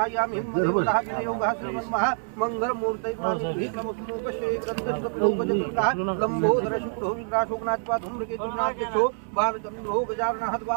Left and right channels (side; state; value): left; silent; 61 dB below the other